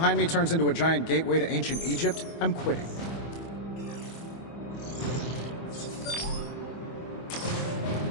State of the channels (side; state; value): right; late; 24 ms